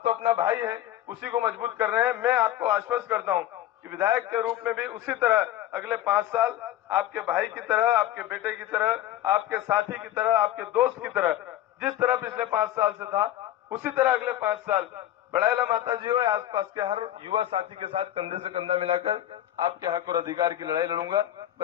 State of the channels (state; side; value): quieter; right; 12.9 dB